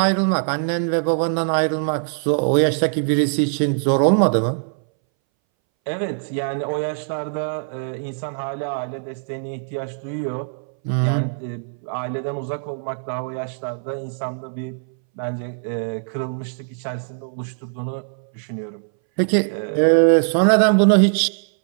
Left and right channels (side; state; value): left; silent; 62 dB below the other